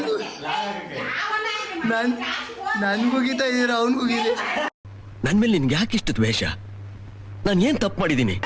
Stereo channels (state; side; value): identical; both; correlation 1.00